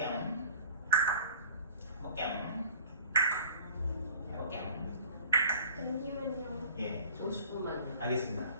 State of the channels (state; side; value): inverted; both; correlation -0.47